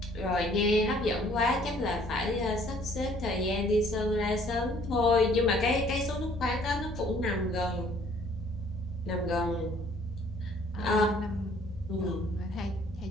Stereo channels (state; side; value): normal; both; correlation 0.59